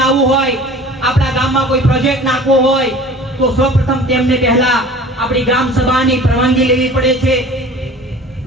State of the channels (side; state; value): both; normal; correlation 0.43